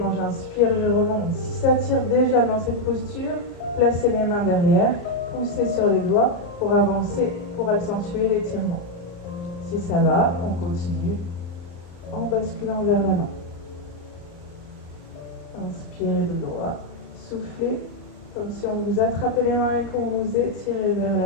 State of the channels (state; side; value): late; right; 34 ms